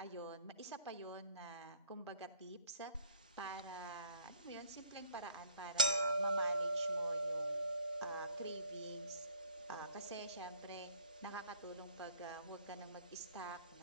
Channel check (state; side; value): inverted; both; correlation -0.55